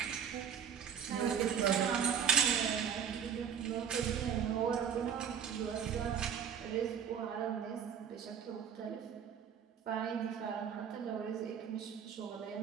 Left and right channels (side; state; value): left; quieter; 7.9 dB